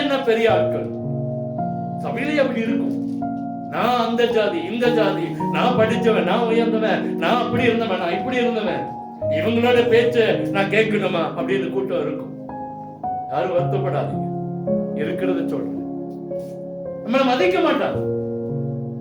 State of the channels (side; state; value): both; identical; correlation 1.00